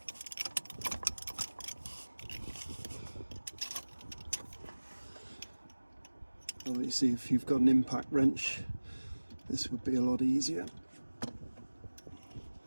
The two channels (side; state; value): both; inverted; correlation -1.00